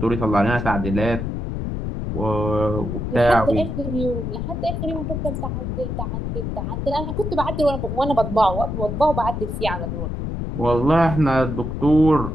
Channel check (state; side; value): noise; left; rumble, 4 dB below the sound